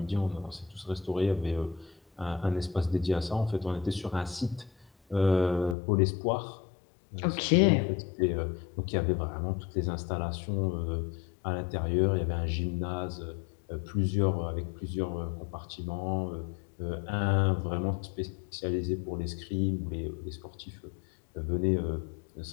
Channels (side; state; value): right; drops out; at 5.8 s